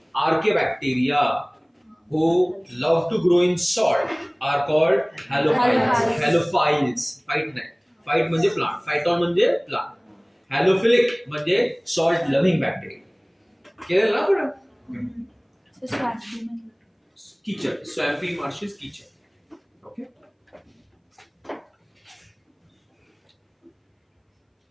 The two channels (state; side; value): identical; both; correlation 1.00